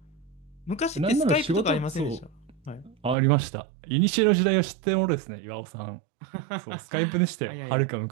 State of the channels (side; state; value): left; drops out; at 3.2 s